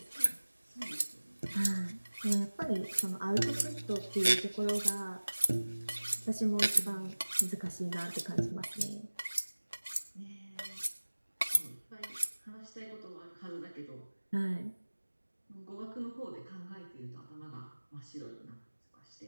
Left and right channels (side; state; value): both; inverted; correlation -1.00